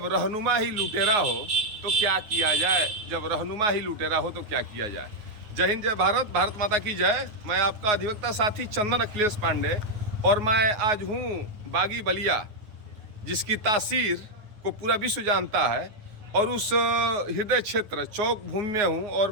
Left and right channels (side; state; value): left; late; 9.5 ms